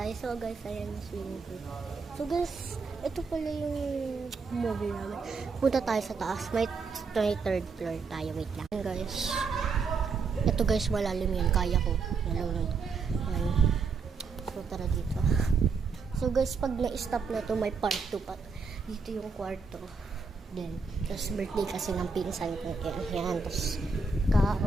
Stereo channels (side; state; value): left; quieter; 4.8 dB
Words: So guys, ayan yung swimming pool. So guys, ito pala yung movie namin. Punta tayo sa taas. May 23rd floor tayo. Wait lang. Ayan guys. Ito guys, malalim yan. Kaya ko. Ayan. So tara dito. So guys, pag na-stop na to, may part 2 pa. Dito yung kwarto. Then, tapos birthday kasi ng pinsan ko. Ayan. Tapos,